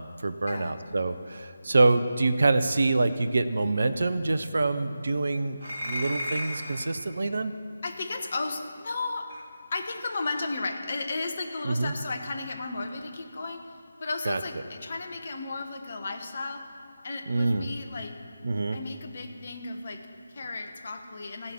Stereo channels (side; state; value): both; inverted; correlation -0.92